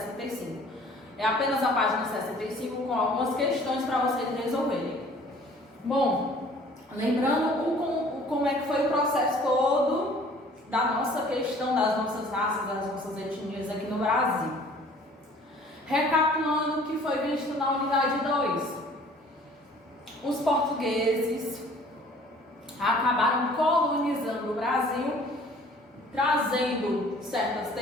É apenas a página 65 com algumas questões para vocês resolverem. Bom, lembrando como é que foi o processo todo da nossa questão das nossas raças, das nossas etnias aqui no Brasil. Recapitulando o que foi visto na unidade 2. Os portugueses acabaram colonizando o Brasil, trazendo certas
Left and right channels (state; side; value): normal; both; correlation 0.52